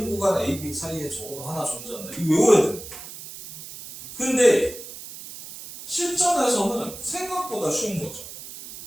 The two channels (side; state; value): right; noise; hiss, 13 dB below the sound